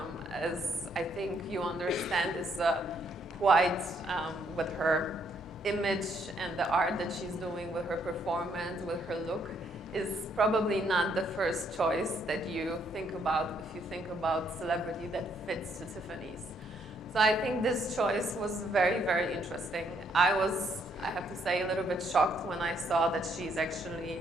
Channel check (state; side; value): normal; both; correlation 0.71